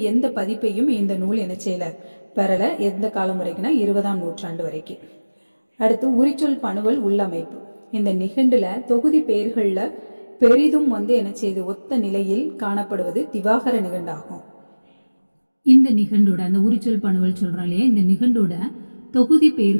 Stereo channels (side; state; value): both; inverted; correlation -1.00